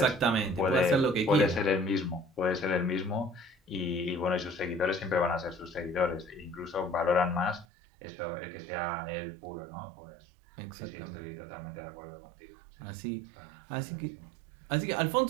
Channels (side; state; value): left; drops out; at 7.7 s